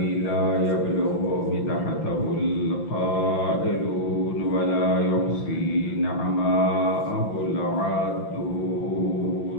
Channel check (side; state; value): right; late; 5.9 ms